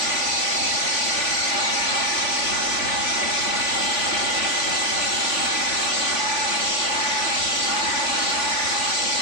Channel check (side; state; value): right; late; 3.5 ms